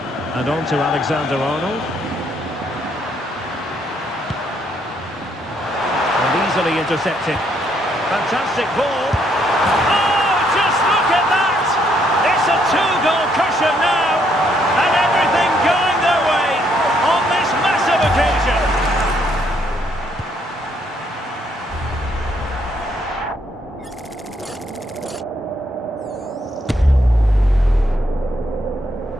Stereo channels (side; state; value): both; normal; correlation 0.72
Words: And on to Alexander-Arnold. And easily intercepted. Fantastic ball. Oh, just look at that! It's a two-goal cushion now. And everything going their way on this massive occasion.